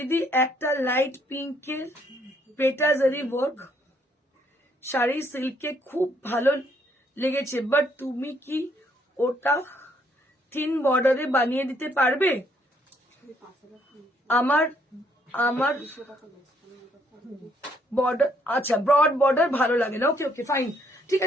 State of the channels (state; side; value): normal; both; correlation 0.69